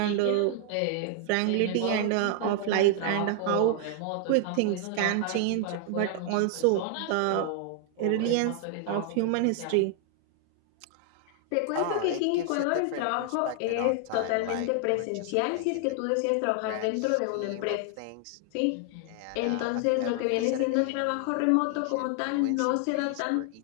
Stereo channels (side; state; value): both; different; correlation 0.00